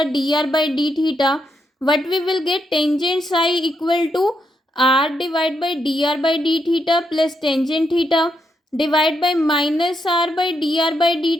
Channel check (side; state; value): both; normal; correlation 0.80